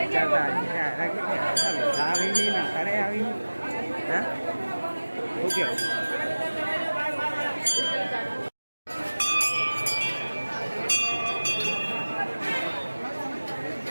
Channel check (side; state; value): both; inverted; correlation -1.00